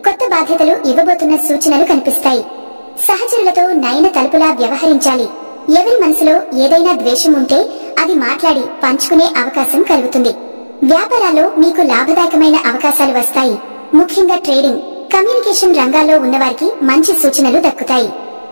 కొత్త బాధ్యతలు ఇవ్వబోతున్న సూచనలు కనిపిస్తాయి. సహచరులతో నయన తలుపులా వ్యవహరించాలి. ఎవరి మనసులో ఏదైనా ద్వేషం ఉంటే అది మాట్లాడి పంచుకునే అవకాశం కలుగుతుంది. వ్యాపారాల్లో మీకు లాభదాయకమైన అవకాశాలు వస్తాయి. ముఖ్యంగా ట్రేడింగ్, కమ్యూనికేషన్ రంగాల్లో ఉన్నవారికి మంచి సూచనలు దక్కుతాయి.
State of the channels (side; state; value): both; inverted; correlation -1.00